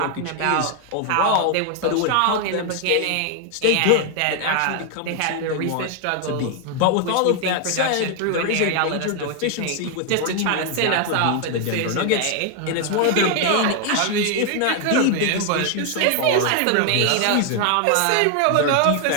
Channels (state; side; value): different; both; correlation 0.00